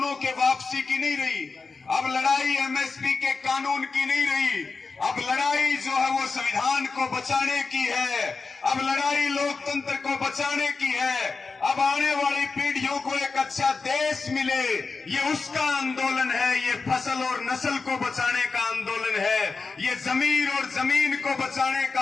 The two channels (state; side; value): quieter; right; 4.4 dB